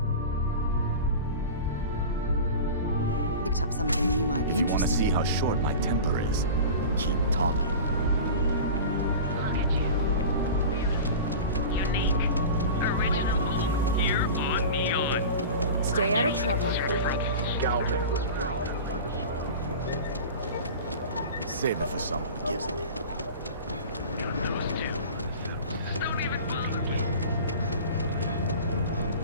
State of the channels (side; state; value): both; inverted; correlation -0.34